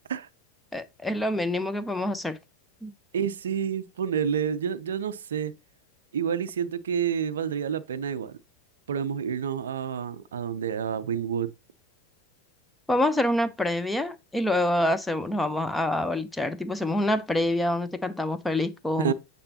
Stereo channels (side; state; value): both; normal; correlation 0.37